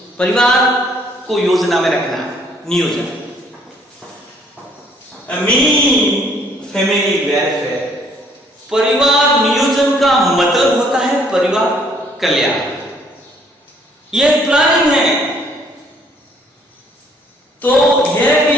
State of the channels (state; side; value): normal; both; correlation 0.63